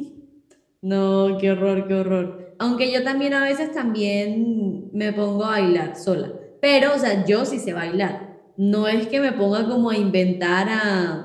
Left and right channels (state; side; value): identical; both; correlation 1.00